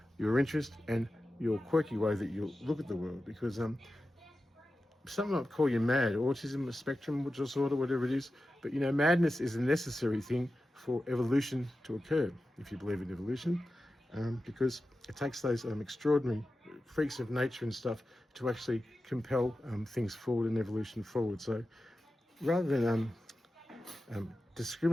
your interest, and your quirky way that you look at the world. Because some might call you mad, autism, a spectrum disorder, whatever it is. But madness is a necessary thing for evolution to occur, if you believe in evolution, because it takes those extraordinary freaks of nature and stuff to actually compel things forward and evolution forward. So rather than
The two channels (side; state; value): both; normal; correlation 0.93